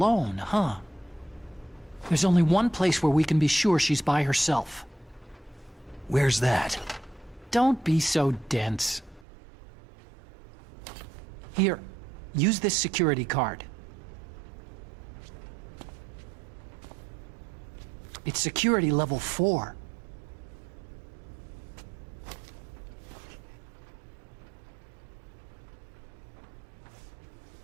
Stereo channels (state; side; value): drops out; left; at 9.2 s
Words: huh? There's only one place where we can be sure she's by herself. Where's that? Don't be so dense. Here, use this security card. It's security level 4.